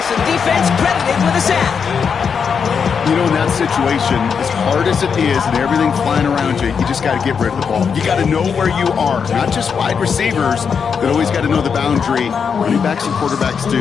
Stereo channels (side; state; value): right; quieter; 6.4 dB